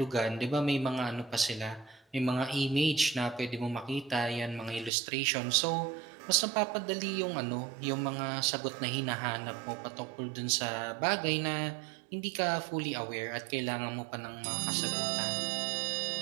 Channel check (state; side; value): drops out; left; at 4.9 s